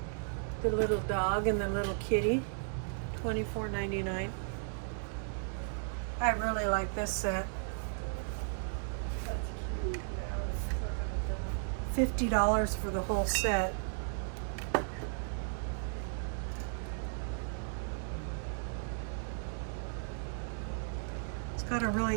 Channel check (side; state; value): left; silent; digital silence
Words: The little dog and the little kitty, $24.99. I really like this set. $50 for the whole set. It's got a